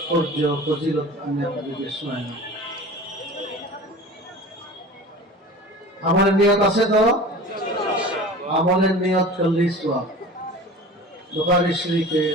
ফজিলত আমি আপনাদেরকে শোনাই। আমলের নিয়ত আছে তো? আমলের নিয়ত করলেই সওয়াব। বুখারী শরীফে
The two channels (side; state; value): both; normal; correlation 0.38